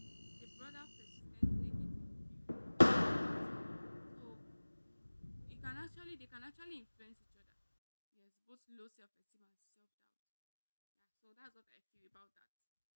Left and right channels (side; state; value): both; inverted; correlation -1.00